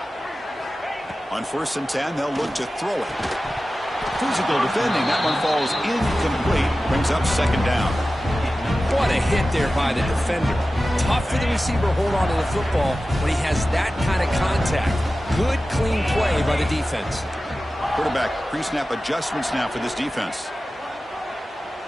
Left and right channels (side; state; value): both; normal; correlation 0.95